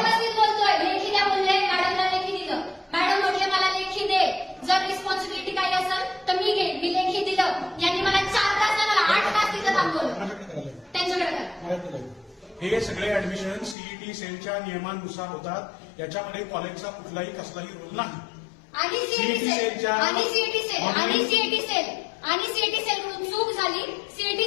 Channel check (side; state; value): right; drops out; at 13.8 s